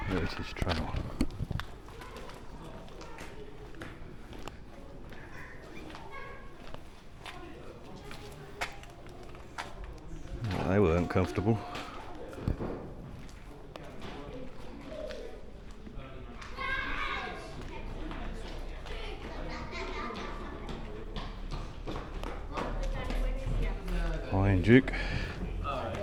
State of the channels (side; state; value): both; identical; correlation 1.00